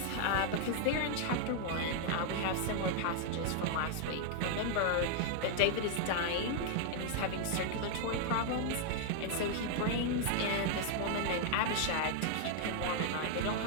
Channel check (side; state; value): both; different; correlation 0.00